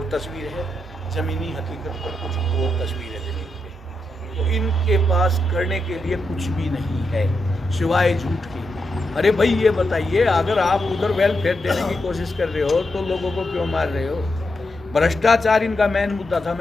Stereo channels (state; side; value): normal; both; correlation 0.84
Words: तस्वीर है, ज़मीनी हकीकत पर कुछ और तस्वीर है ज़मीन पे। तो इनके पास करने के लिए कुछ भी नहीं है सिवाय झूठ की। अरे भाई ये बताइए, अगर आप उधर वेलफेयर देने की कोशिश कर रहे हो तो लोगों को क्यों मार रहे हो? भ्रष्टाचार इनका मेन मुद्दा था,